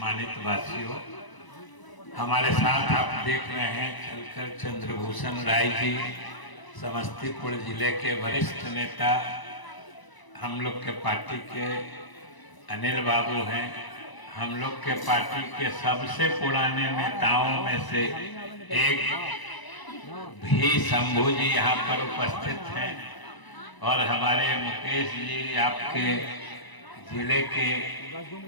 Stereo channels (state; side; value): late; right; 1.0 ms